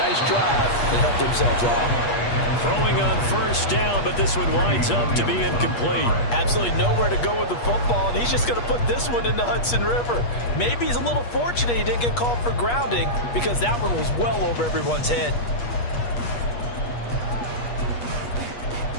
drive and help themselves out. Throwing on first down, but this one winds up to be incomplete. Absolutely nowhere to go with the football, and he's just going to put this one in the Hudson River. Maybe he's a little fortunate he didn't get called for grounding, because that one was well over everyone's head.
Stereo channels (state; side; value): late; right; 8.4 ms